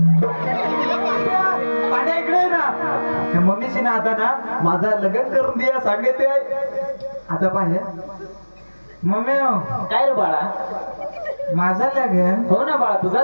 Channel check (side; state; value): both; inverted; correlation -1.00